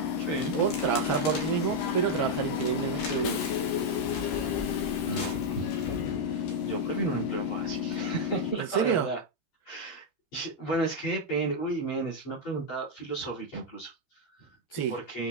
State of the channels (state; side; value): late; right; 13 ms